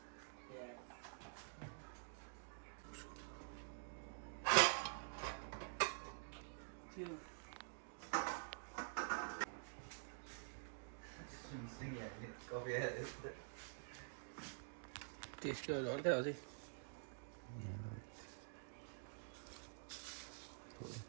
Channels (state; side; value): silent; left; digital silence